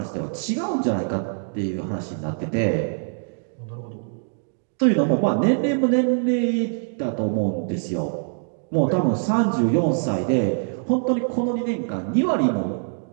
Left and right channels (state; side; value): silent; left; digital silence